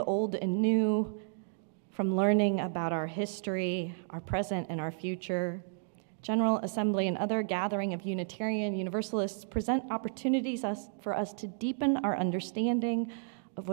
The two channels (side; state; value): left; silent; digital silence